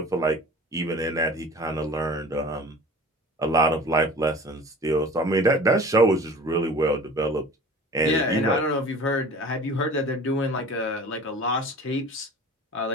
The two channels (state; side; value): normal; both; correlation 0.42